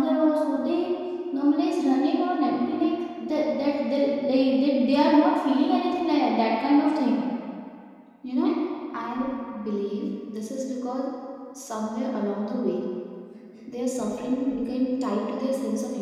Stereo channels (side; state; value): both; identical; correlation 1.00